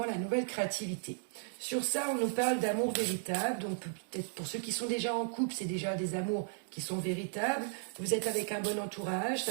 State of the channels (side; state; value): left; silent; 54 dB below the other